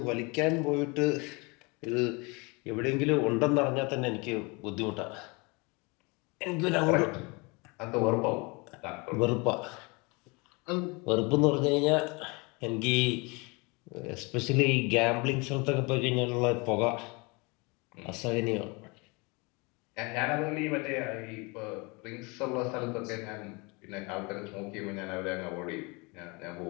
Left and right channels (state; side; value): quieter; right; 28.2 dB